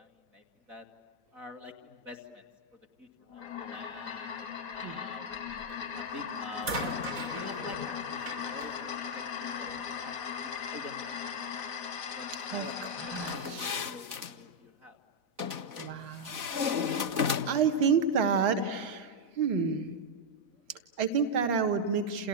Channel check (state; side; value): late; left; 4.0 ms